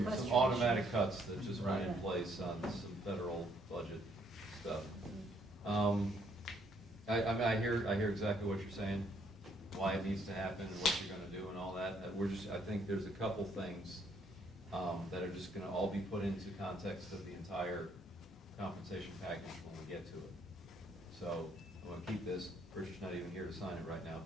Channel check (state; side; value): normal; both; correlation 0.69